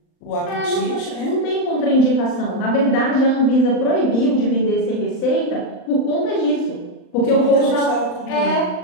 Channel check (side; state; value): right; late; 39 ms